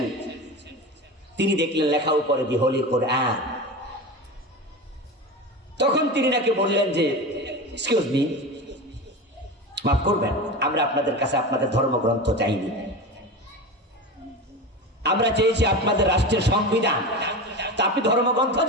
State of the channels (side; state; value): both; normal; correlation 0.26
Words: তিনি দেখলেন লেখা উপরে দি হোলি কোরআন। তখন তিনি নাকি বললেন যে, এক্সকিউজ মি, মাফ করবেন, আমরা আপনাদের কাছে আপনাদের ধর্মগ্রন্থ চাইনি, আমরা চেয়েছি আপনাদের রাষ্ট্রের সংবিধান। তা আপনি ধর্মগ্রন্থ